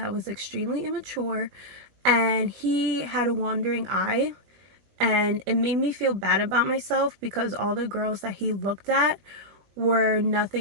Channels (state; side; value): late; left; 20 ms